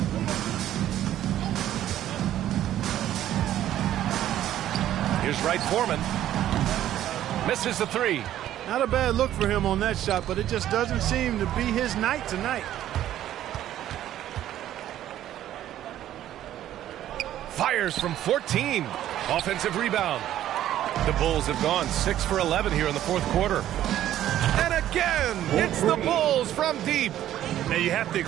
Here's Wright Foreman. Misses the three. Not a bad look for him on that shot, but it just doesn't seem to be his night tonight. Fires from 14. Offensive rebound. The Bulls have gone 6 for 11 here in the fourth quarter. And again, it's the Bulls from deep. Now you have to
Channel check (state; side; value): quieter; left; 12.3 dB